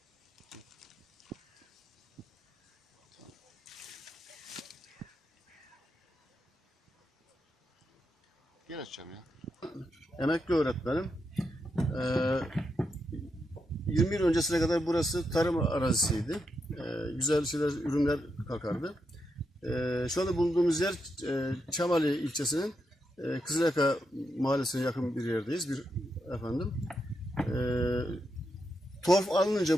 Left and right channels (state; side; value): normal; both; correlation 0.84